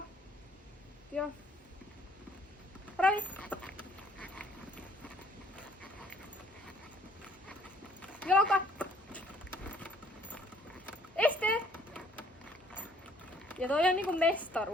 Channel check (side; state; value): both; normal; correlation 0.61